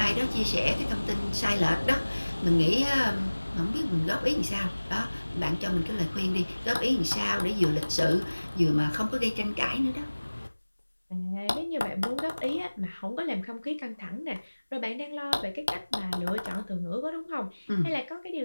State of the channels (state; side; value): inverted; both; correlation -1.00